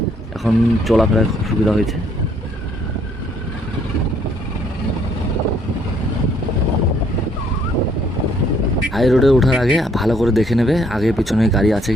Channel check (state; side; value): normal; both; correlation 0.66